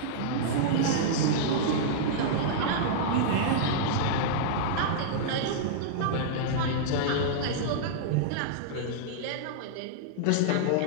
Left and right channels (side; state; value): both; different; correlation -0.02